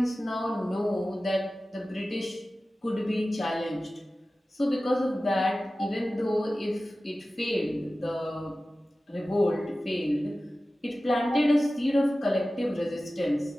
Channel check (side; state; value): both; normal; correlation 0.96